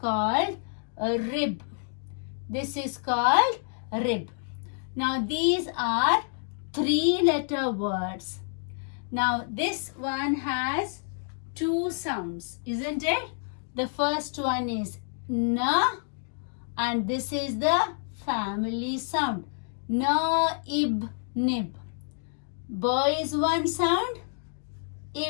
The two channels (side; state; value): right; silent; 59 dB below the other